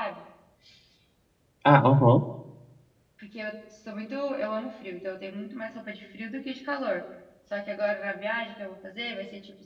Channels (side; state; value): both; identical; correlation 1.00